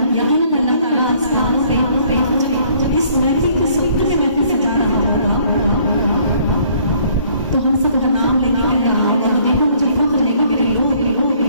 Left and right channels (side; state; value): both; inverted; correlation -0.61